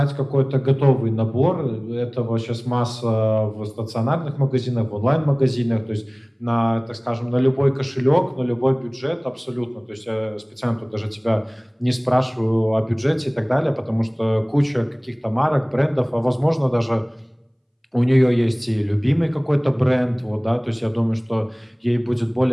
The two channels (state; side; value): identical; both; correlation 1.00